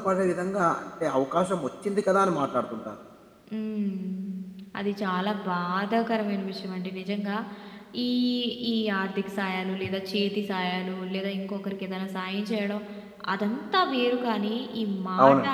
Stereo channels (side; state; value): both; identical; correlation 1.00